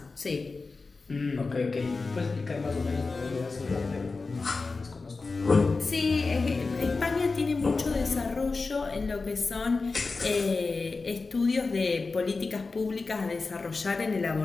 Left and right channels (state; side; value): quieter; right; 4.0 dB